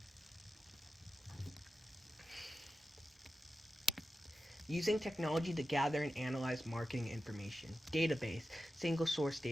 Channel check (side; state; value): both; normal; correlation 0.93